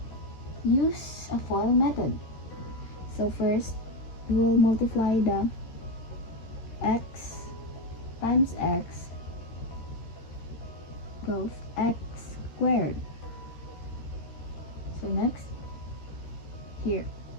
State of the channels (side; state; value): right; late; 13 ms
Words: use a FOIL method. So first we'll multiply the x times x of x squared. So next, here,